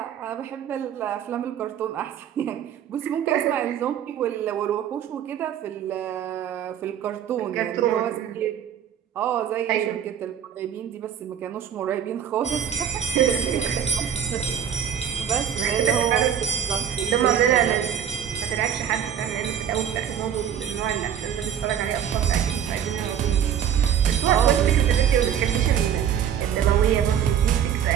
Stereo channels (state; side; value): quieter; left; 9.0 dB